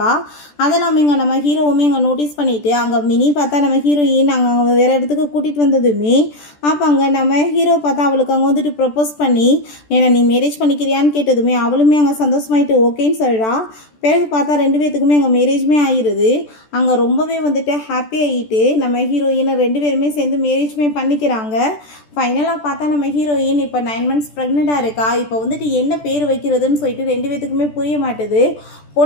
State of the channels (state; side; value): late; right; 14 ms